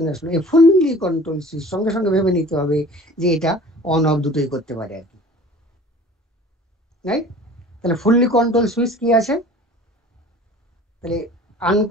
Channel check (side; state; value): both; normal; correlation 0.45